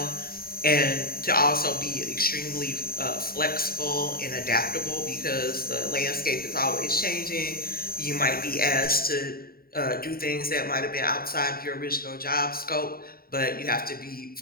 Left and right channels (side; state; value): right; late; 0.43 ms